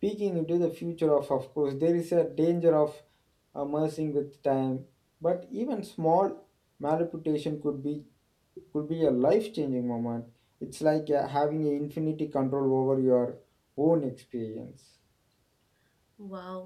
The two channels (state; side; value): identical; both; correlation 1.00